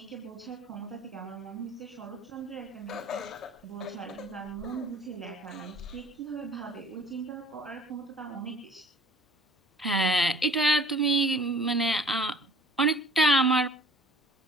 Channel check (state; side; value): normal; both; correlation 0.51